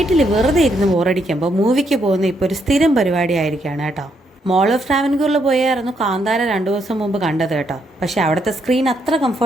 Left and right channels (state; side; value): normal; both; correlation 0.76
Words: വെറുതെ ഇരുന്ന് ബോറടിക്കുമ്പോൾ മൂവിക്ക് പോകുന്ന ഇപ്പോൾ ഒരു സ്ഥിരം പരിപാടിയായിരിക്കുകയാണ് കേട്ടോ. മോൾ ഓഫ് ട്രാവൻകൂറിൽ പോയായിരുന്നു കാന്താര 2 ദിവസം മുമ്പ് കണ്ടത് കേട്ടോ. പക്ഷേ അവിടുത്തെ സ്ക്രീൻ അത്ര